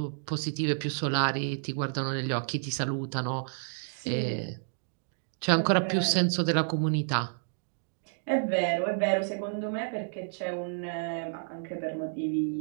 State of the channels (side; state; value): left; silent; digital silence